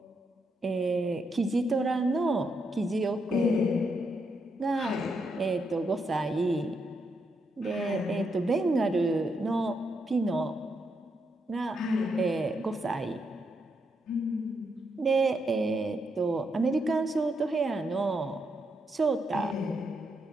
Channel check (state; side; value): normal; both; correlation 0.80